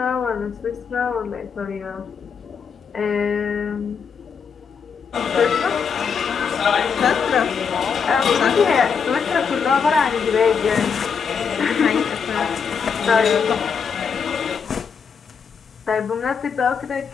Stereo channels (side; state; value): right; quieter; 6.3 dB